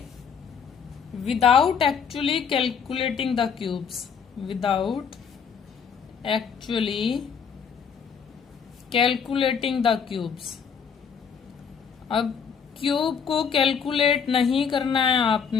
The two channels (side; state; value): right; quieter; 6.7 dB